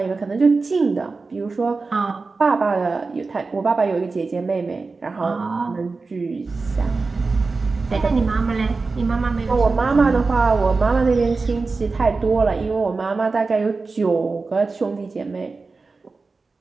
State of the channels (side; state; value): left; quieter; 4.0 dB